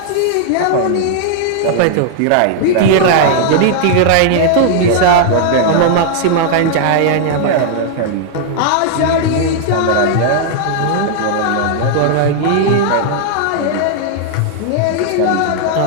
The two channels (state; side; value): different; both; correlation 0.00